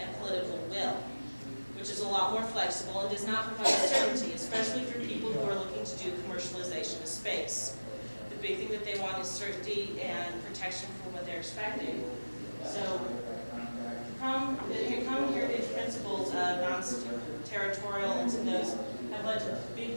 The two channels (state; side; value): inverted; both; correlation -1.00